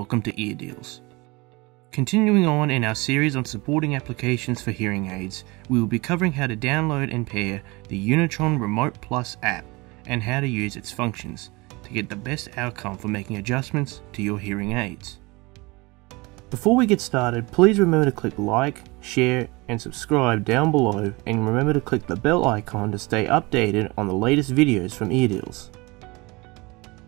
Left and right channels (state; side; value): quieter; left; 24.6 dB